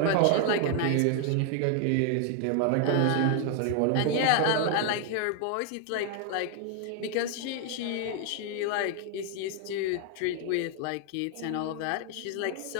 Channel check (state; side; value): different; both; correlation 0.01